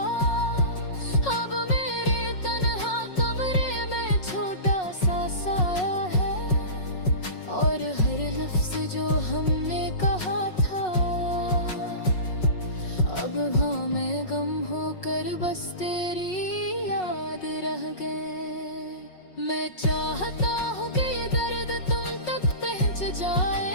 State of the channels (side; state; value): right; late; 5.4 ms